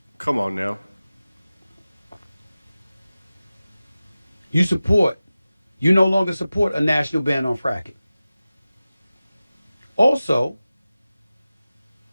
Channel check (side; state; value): both; inverted; correlation -0.96